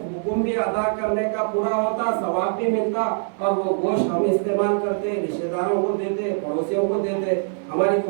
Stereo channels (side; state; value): left; silent; digital silence